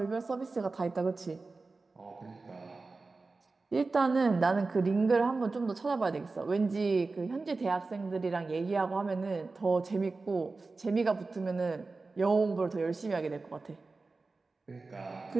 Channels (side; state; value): left; quieter; 3.8 dB